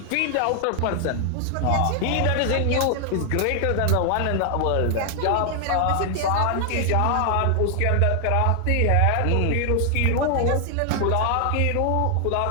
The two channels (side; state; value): both; different; correlation 0.00